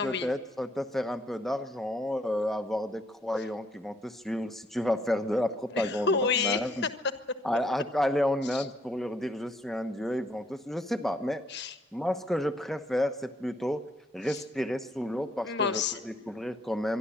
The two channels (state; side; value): normal; both; correlation 0.69